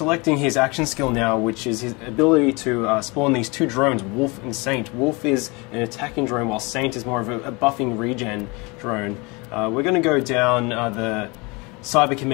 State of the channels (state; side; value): quieter; right; 27.2 dB